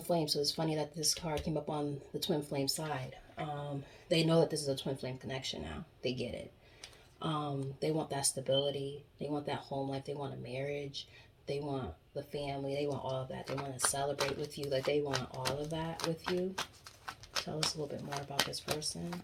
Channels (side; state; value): both; identical; correlation 1.00